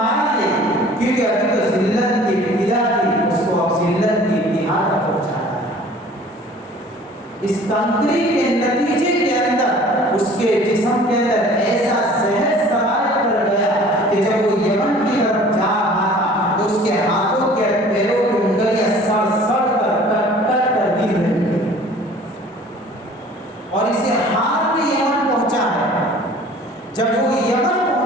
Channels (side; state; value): both; normal; correlation 0.49